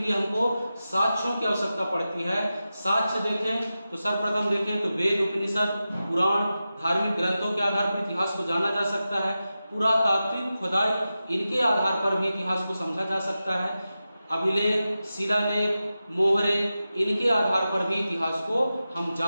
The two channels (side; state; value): both; inverted; correlation -0.93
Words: हमको साक्ष्यों की आवश्यकता पड़ती है। साक्ष्य देखें तो सर्वप्रथम देखें तो वेद, उपनिषद, पुराण, धार्मिक ग्रंथों के आधार पर इतिहास को जाना जा सकता है। पुरातात्विक खुदाई, इनके आधार पर भी इतिहास को समझा जा सकता है। अभिलेख, शिलालेख, मोहरे, इनके आधार पर भी इतिहास को हम